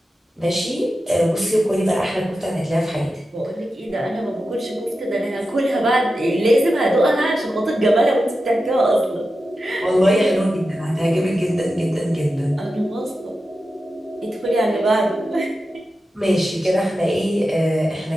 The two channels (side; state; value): both; normal; correlation 0.91